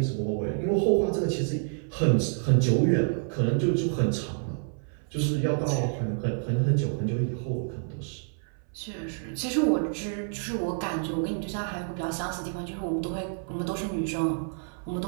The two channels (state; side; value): silent; left; 57 dB below the other